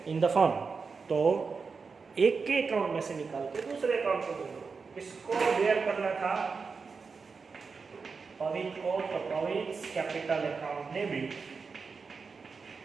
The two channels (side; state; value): left; quieter; 5.0 dB